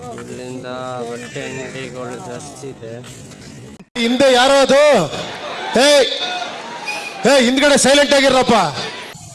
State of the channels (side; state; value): both; identical; correlation 1.00